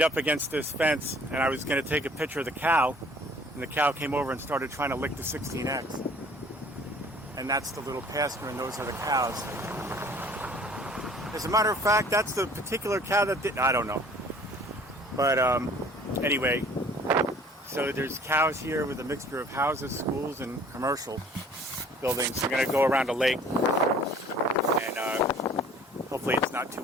up against this fence, and I was going to take a picture of the cow, and the cow came over and started trying to lick the 16X. And that's the little pasture, and those are the cows. As a matter of fact, that's the particular cow that did, I don't know. But anyway, so there's cows here with a mixture of houses, schools, and commercial buildings. We're going to go around a lake, and hopefully it's not too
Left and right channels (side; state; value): both; normal; correlation 0.52